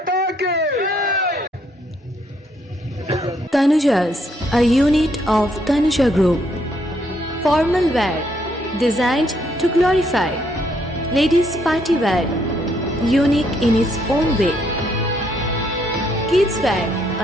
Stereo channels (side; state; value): both; normal; correlation 0.72